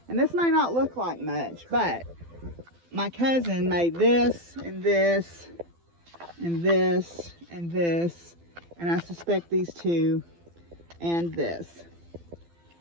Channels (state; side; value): late; left; 12 ms